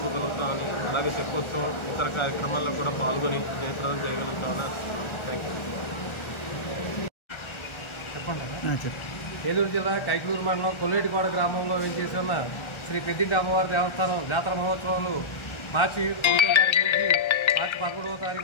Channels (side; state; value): right; late; 1.4 ms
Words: అలాగే తెప్పోత్సవం ఇతర కార్యక్రమాల్లో కూడా పాల్గొని జయప్రదం చేయగలుగుతామని థ్యాంక్ యూ. ఏలూరు జిల్లా కైకలూరు మండలం కొల్లేటికోట గ్రామంలో వేంచేసి ఉన్న శ్రీ పెద్దింటి అమ్మవారి దేవస్థానం జాతర మహోత్సవాలు మార్చి 1వ తారీఖు నుంచి మార్చి 11వ